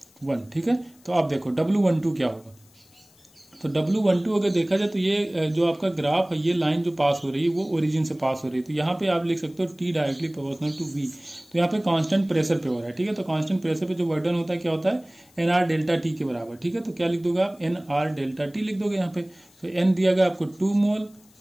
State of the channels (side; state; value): left; noise; hiss, 29 dB below the sound